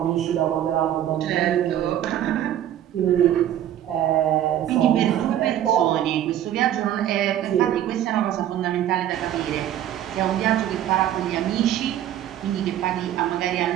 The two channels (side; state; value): left; quieter; 11.5 dB